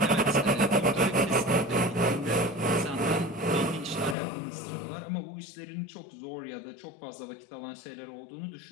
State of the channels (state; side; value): drops out; right; at 4.2 s